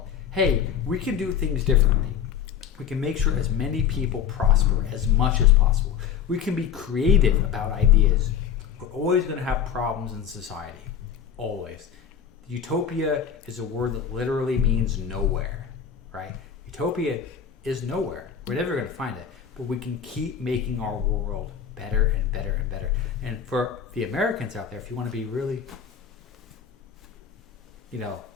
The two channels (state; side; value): quieter; right; 8.1 dB